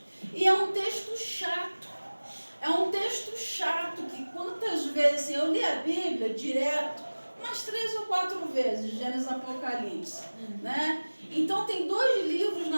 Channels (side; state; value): both; inverted; correlation -1.00